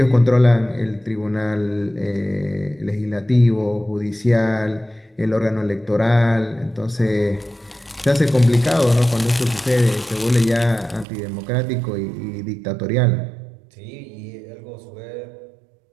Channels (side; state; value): left; drops out; at 11.1 s